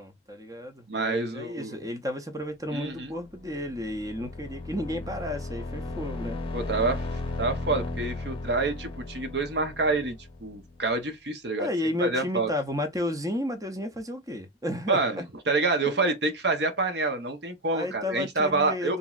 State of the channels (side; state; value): both; normal; correlation 0.19